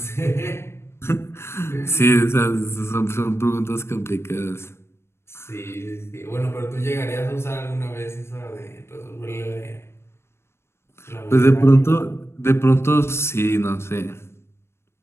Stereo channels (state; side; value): late; right; 0.12 ms